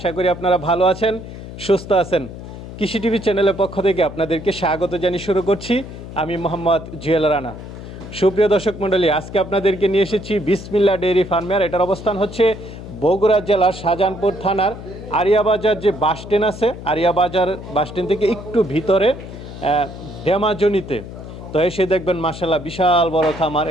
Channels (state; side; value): noise; left; hum, 12 dB below the sound